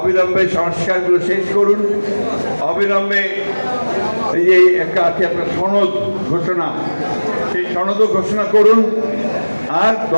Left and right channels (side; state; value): both; inverted; correlation -1.00